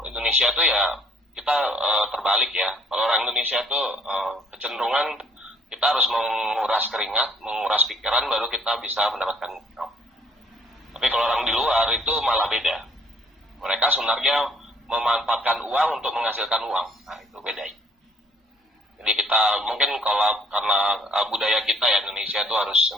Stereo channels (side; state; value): both; normal; correlation 0.61